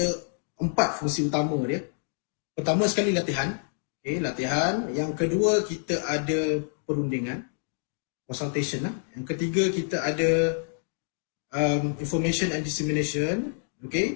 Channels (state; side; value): silent; right; digital silence